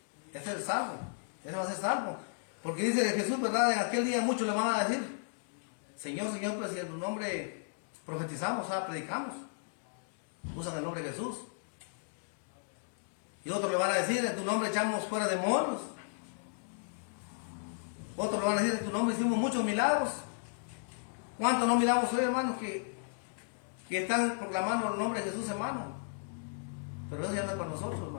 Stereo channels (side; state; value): right; silent; digital silence